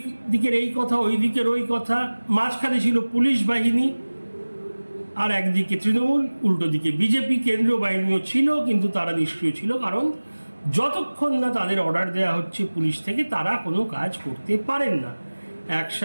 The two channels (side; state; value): both; inverted; correlation -1.00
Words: দিকের এই কথা, ওই দিকের ওই কথা। মাঝখানে ছিল পুলিশ বাহিনী, আর একদিকে তৃণমূল, উল্টো দিকে বিজেপি। কেন্দ্রীয় বাহিনীও ছিল, কিন্তু তারা নিষ্ক্রিয় ছিল, কারণ যতক্ষণ না তাদের অর্ডার দেওয়া হচ্ছে পুলিশ থেকে তারা কোনো কাজ করতে পারেন না,